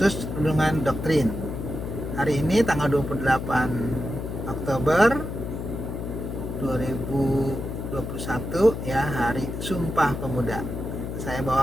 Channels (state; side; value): noise; left; hum, 5 dB below the sound